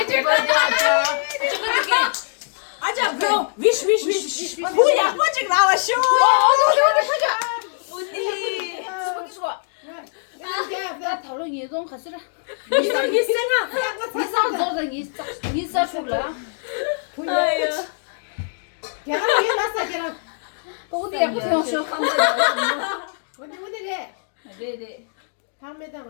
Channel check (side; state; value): right; silent; digital silence